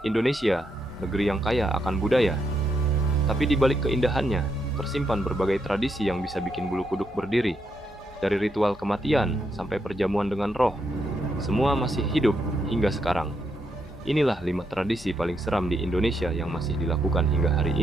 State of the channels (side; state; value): both; normal; correlation 0.79